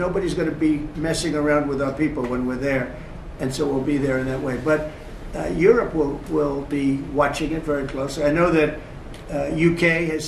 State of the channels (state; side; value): identical; both; correlation 1.00